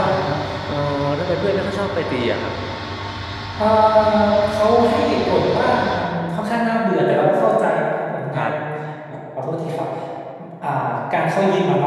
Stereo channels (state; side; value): identical; both; correlation 1.00